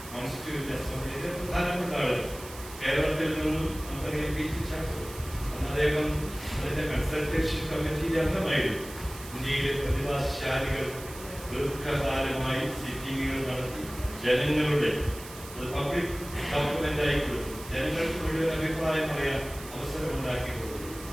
കോൺസ്റ്റിറ്റ്യൂന്റ് അസംബ്ലിയിലെ പ്രധാനപ്പെട്ട ആളുകൾ. കേരളത്തിൽ നിന്നും നമുക്കറിയാം പി ടി ചാക്കോ, അന്ന് അദ്ദേഹം അതിന്റെ കൺസൾട്ടേഷൻ കമ്മിറ്റിയിലെ അംഗമായിരുന്നു. ഇന്ത്യയിലെ പ്രതിഭാശാലികൾ ദീർഘകാലമായി സിറ്റിംഗുകൾ നടത്തി ജനങ്ങളുടെ പബ്ലിക് ഡോക്യുമെന്റ് ആയി കൊടുത്തു, ജനങ്ങൾക്ക് മുഴുവൻ അഭിപ്രായം പറയാൻ അവസരം ഉണ്ടാക്കി കൊടുത്തു.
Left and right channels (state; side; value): noise; right; hiss, 15 dB below the sound